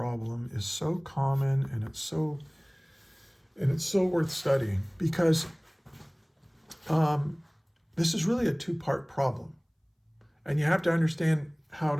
is so common, and it's so worth studying, because this is really a two-part problem. And you have to understand how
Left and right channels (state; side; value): identical; both; correlation 1.00